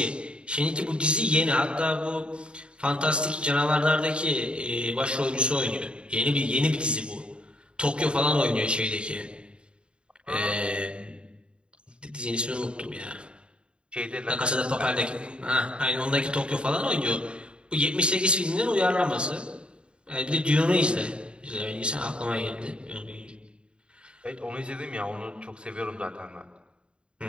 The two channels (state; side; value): late; left; 0.054 ms